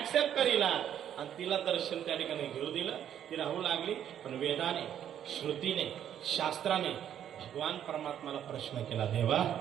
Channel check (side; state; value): left; quieter; 10.0 dB